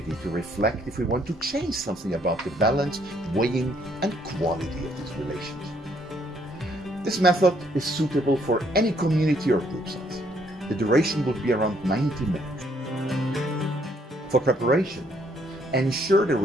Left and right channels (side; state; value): both; normal; correlation 0.68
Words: to reflect if we want to change something about the balance, weighing, and quality of these relationships. This method is suitable for any community or group size. The duration will be around 90 minutes. For preparation, ensure the